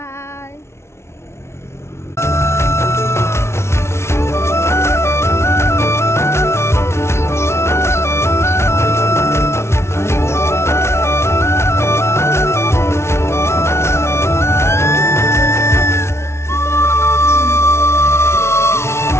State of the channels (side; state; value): right; late; 0.13 ms